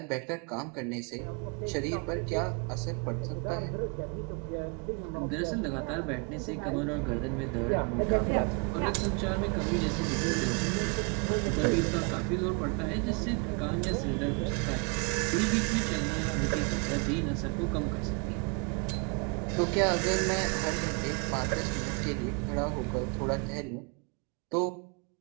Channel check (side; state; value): left; quieter; 34.1 dB